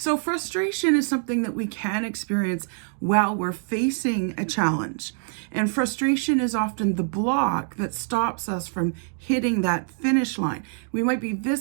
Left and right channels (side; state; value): left; silent; 62 dB below the other